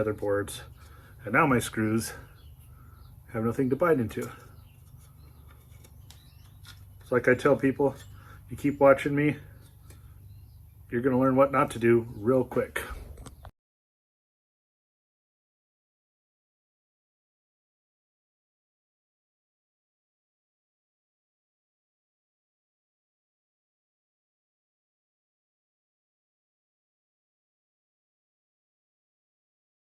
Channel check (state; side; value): identical; both; correlation 1.00